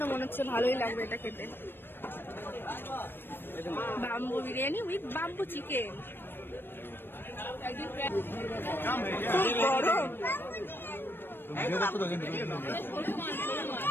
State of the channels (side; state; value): right; late; 0.10 ms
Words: তো মনে হচ্ছে ভালোই লাগবে এটা খেতে। Bamboo biryani with bamboo chicken, খুব গরম।